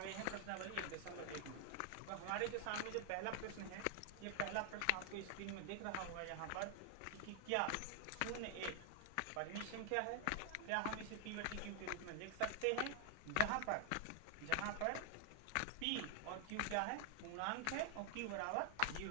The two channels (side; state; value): both; different; correlation 0.00